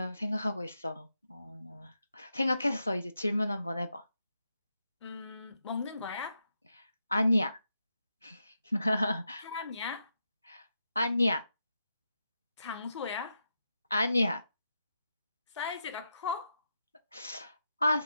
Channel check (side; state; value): both; inverted; correlation -0.85